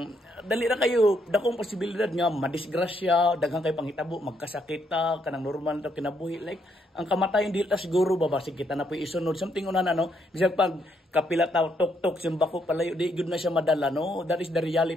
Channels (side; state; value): both; normal; correlation 0.74